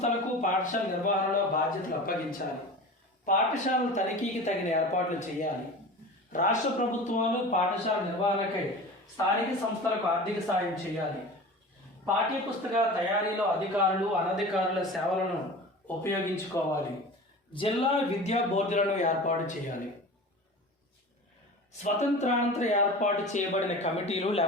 పాఠశాల నిర్వహణలో బాధ్యతలు అప్పగించాలి. పాఠశాలల తనిఖీకి తగిన ఏర్పాట్లు చేయాలి. రాష్ట్ర ప్రభుత్వాలు పాఠశాల నిర్వహణకై స్థానిక సంస్థలకు ఆర్థిక సాయం చేయాలి. పాఠ్యపుస్తకాల తయారీలో అధికారులు, అనధికారుల సేవలను ఉపయోగించుకోవాలి. జిల్లా విద్యా బోర్డులను ఏర్పాటు చేయాలి. స్వతంత్రానంతర ఏర్పాటు చేయబడిన కమిటీలు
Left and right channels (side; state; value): both; normal; correlation 0.35